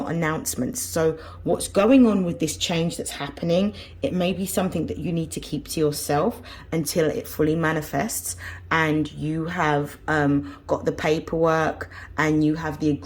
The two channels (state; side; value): identical; both; correlation 1.00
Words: announcements. So what's going on with this change that's happening, it may be something that you need to keep to yourself until it fully manifests and you have got the paperwork and you have the